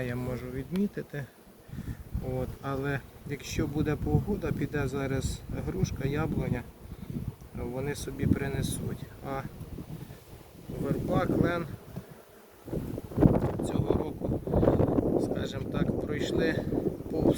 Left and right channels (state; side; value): identical; both; correlation 1.00